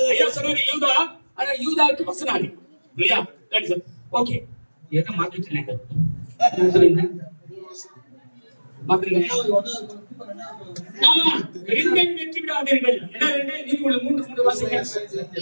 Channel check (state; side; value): inverted; both; correlation -1.00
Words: ஐயா சொன்னாரு யூதா, ஆனா யூதாவுக்கு வசனம் இல்லையா? ஓகே, எதை மாத்திட்டேன் வெற்றி விடாதீர்கள். மூன்று வாசிக்க